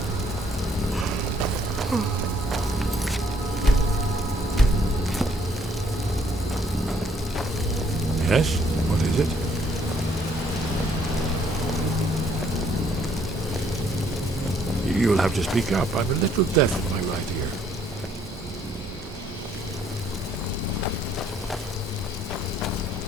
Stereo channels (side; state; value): both; normal; correlation 0.66